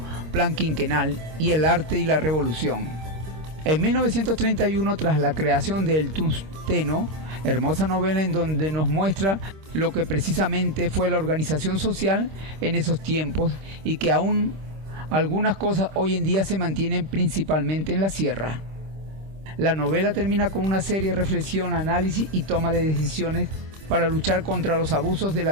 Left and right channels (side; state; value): left; late; 26 ms